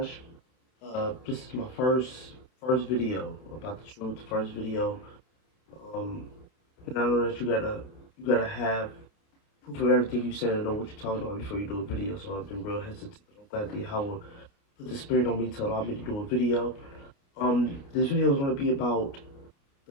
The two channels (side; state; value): right; late; 29 ms